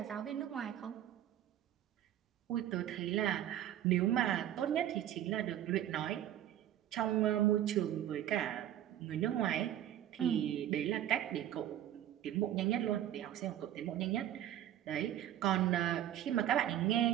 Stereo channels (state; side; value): quieter; left; 11.7 dB